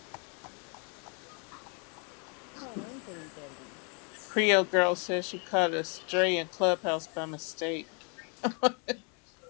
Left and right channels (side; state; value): right; quieter; 36.6 dB